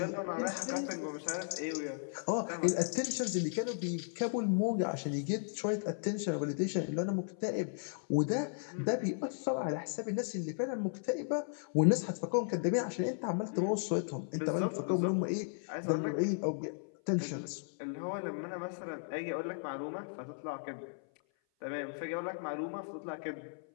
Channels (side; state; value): right; silent; 54 dB below the other